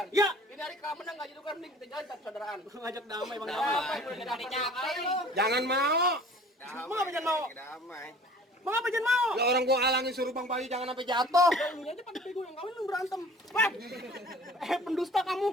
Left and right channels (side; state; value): both; normal; correlation 0.48